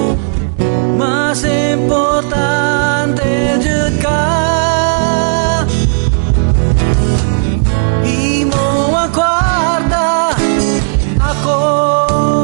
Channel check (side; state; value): left; silent; digital silence